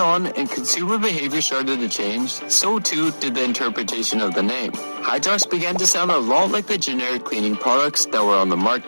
and consumer behavior started to change, so too did the interpretation of the name. Hydrox began to sound a lot like the generic cleaning products that were on the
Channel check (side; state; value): both; inverted; correlation -1.00